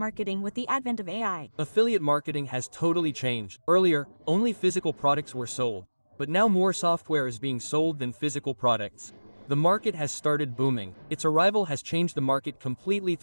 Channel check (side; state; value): both; inverted; correlation -1.00